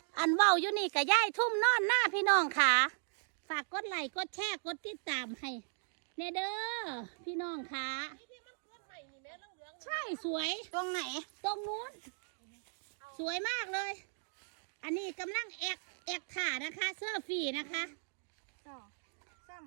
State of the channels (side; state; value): left; silent; digital silence